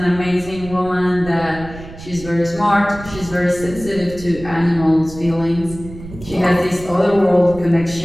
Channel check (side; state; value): right; noise; rumble, 15 dB below the sound